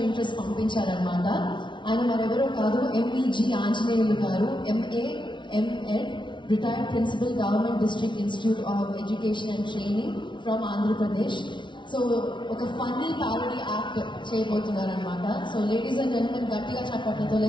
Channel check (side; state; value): right; late; 0.24 ms